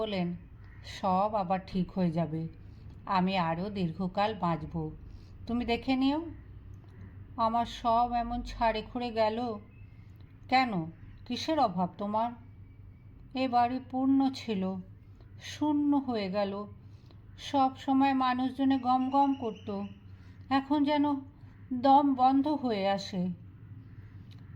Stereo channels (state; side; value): identical; both; correlation 1.00